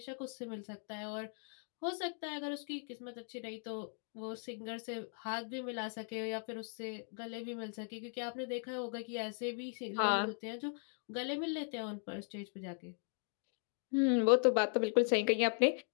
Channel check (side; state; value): right; silent; 52 dB below the other